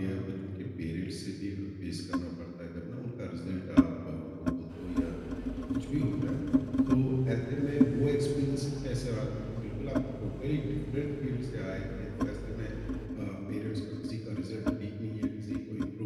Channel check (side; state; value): both; identical; correlation 1.00